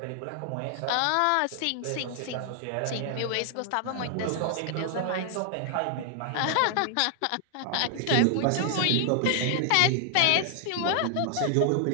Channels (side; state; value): both; different; correlation 0.00